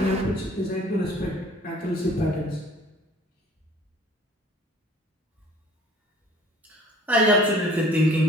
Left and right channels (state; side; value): normal; both; correlation 0.51